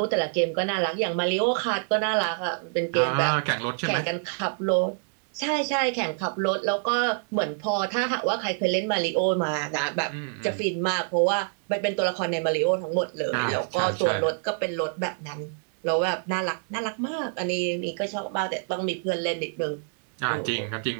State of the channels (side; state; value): left; silent; 60 dB below the other